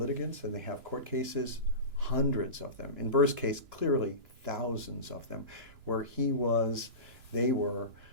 and they have court cases, hundreds of them. In Burr's case, clearly thousands of them, where they were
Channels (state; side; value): late; left; 3.0 ms